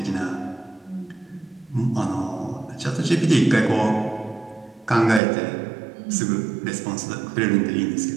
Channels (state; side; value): drops out; left; at 5.2 s